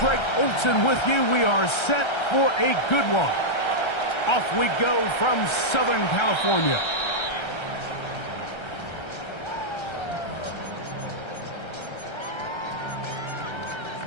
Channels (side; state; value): right; late; 1.3 ms